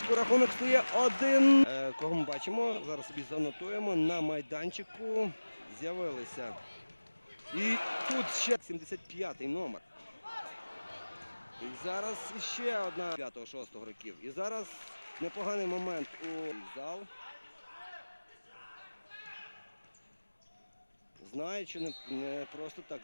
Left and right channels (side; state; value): both; inverted; correlation -1.00